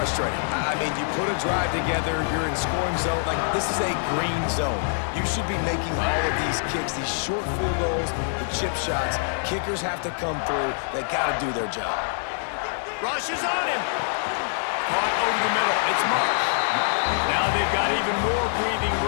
I mean, you put a drive together, you're in scoring zone. Like, this is a green zone. You should be making all of these kicks, these short field goals, the chip shots. Kickers have to come through. They got to do their job. Rush is on him. Caught over the middle. It's Marsh. Now they've got even more breathing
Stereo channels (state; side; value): silent; right; digital silence